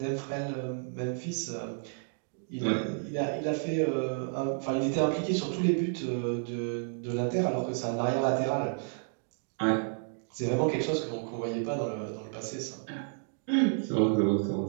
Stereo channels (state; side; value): silent; left; digital silence